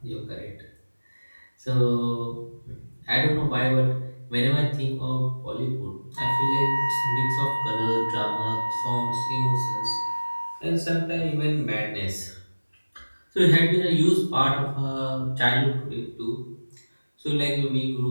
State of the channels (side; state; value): both; inverted; correlation -1.00